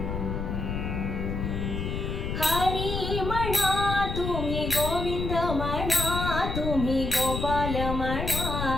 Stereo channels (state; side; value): noise; left; rumble, 3 dB below the sound